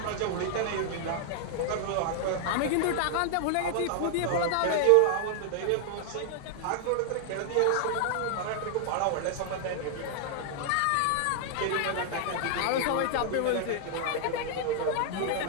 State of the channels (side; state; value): both; different; correlation 0.00